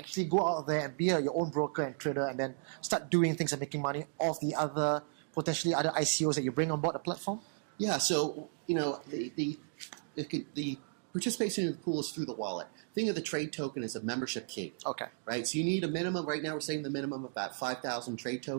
go out there and be your own broker and trader, and then start doing things and making money off the other potentially other ICOs that you bring on board the platform? Yeah, so the participation in the pool is through the wallet. Think of the trade token as a membership key. Right? So you need a minimum, right now we're saying the minimum of about 5,000 trade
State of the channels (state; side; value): silent; left; digital silence